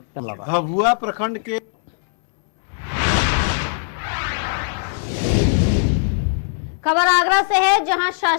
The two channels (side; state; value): right; silent; 65 dB below the other